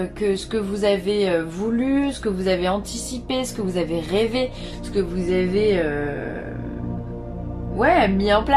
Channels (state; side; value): identical; both; correlation 1.00